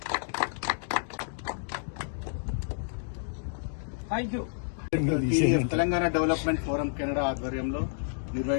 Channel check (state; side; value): silent; right; digital silence